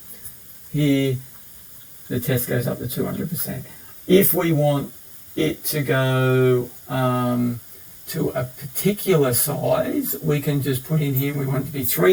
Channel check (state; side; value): identical; both; correlation 1.00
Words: here the test goes up to 200%. If we want it to go to a particular size, we can just put in here, we want it to be